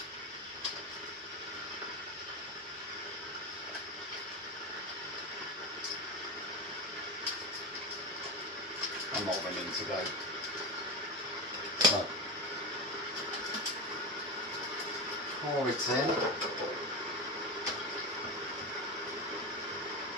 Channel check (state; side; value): normal; both; correlation 0.19